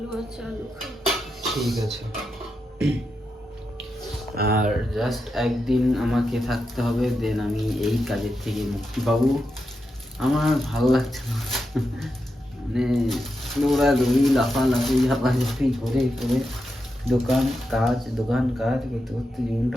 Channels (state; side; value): normal; both; correlation 0.87